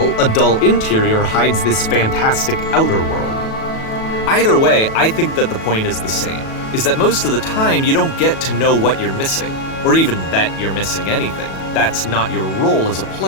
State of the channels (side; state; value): right; late; 37 ms